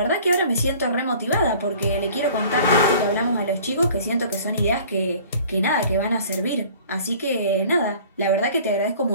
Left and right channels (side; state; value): both; inverted; correlation -0.48